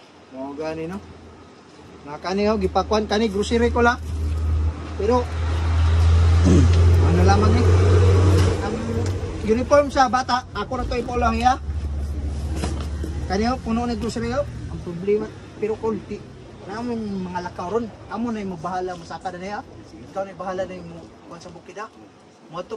Mo gani no? Nakani ho gipakuan kani grocery ko la. Pero ano lamang eh? Ang uniform sa bata, ako na to ipolang ya. Kani ho puno ni grocery ho. Ang problema pero konti. Namong mga lakaw ron, amo na yung mabahala masaka na niya. Ikaw na yung bahala na yung kuwan sa bukid ha. Moto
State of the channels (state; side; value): identical; both; correlation 1.00